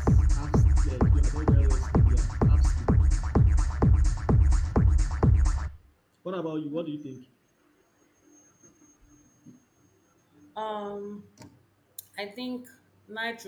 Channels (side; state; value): both; identical; correlation 1.00